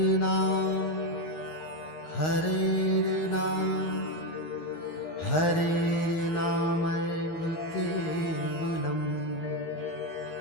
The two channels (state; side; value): late; right; 11 ms